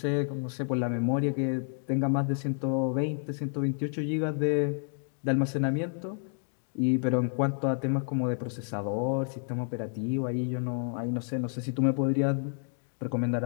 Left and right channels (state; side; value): silent; right; 56 dB below the other